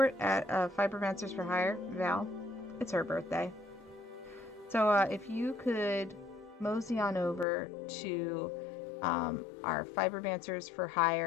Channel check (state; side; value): drops out; right; at 7.5 s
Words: at Fibermancers for Hire, Val, it's her birthday. So if you could mosey on over to our Fibermancers for